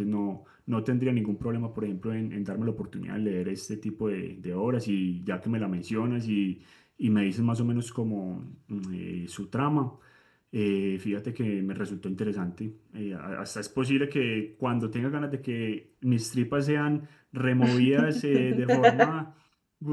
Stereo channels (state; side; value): identical; both; correlation 1.00